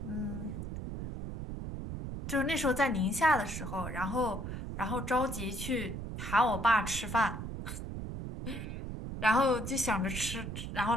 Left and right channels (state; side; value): noise; right; rumble, 6 dB below the sound